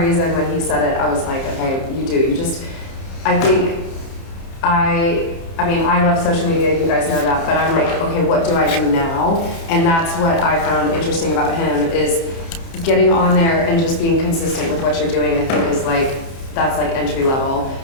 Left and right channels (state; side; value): late; right; 30 ms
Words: when he said it, I was like, okay, I mean, I love social media, you guys know that, but I'm like, okay, what do I do now? And that's what I found interesting about him is getting on there and just being consistent with what you're doing, I think is like, that's like entry level.